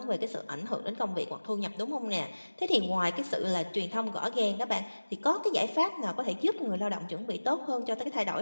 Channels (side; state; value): both; inverted; correlation -1.00